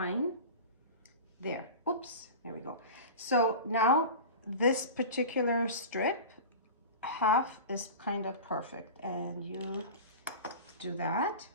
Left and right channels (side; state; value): both; inverted; correlation -0.32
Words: There, oops, there we go. So now this particular strip, half is kind of perfect. And you do that,